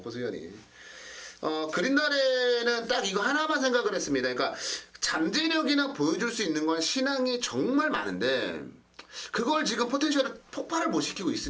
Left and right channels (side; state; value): both; identical; correlation 1.00